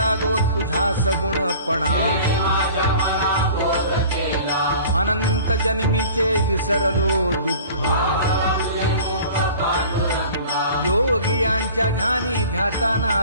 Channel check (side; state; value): both; inverted; correlation -0.44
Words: तुझा सगुणपणा अनंत जन्मीचे विसरलो दुःख योगियांच्या ध्यानी ध्याताना